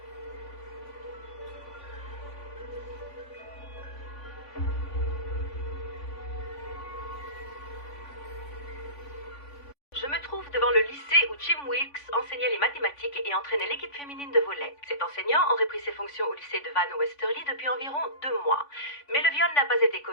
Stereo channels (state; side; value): late; right; 3.5 ms